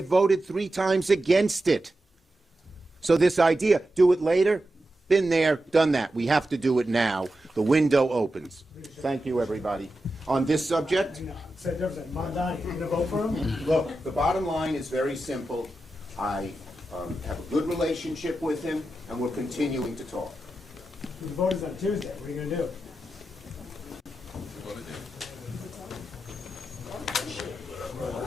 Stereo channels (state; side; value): normal; both; correlation 0.90